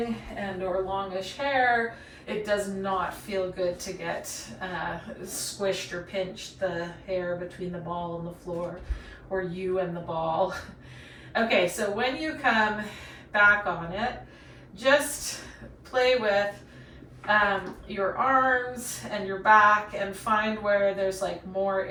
and or longish hair. It does not feel good to get squished or pinched, the hair between the ball and the floor, or you and the ball. Okay, so when you come back on it, just play with your arms and your back and find where there's like more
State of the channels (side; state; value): both; identical; correlation 1.00